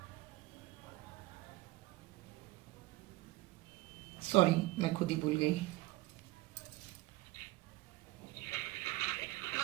सॉरी मैं खुद ही भूल गई।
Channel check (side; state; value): left; quieter; 19.7 dB